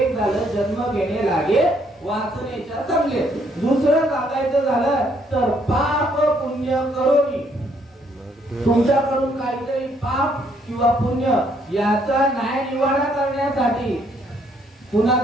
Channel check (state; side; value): normal; both; correlation 0.69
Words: झालं जन्म घेणे लागे वासनेच्या संगेत. दुसरं सांगायचं झालं तर पाप पुण्य करून तुमच्याकडून काहीतरी पाप किंवा पुण्य याचा न्याय निवाडा करण्यासाठी पुन्हा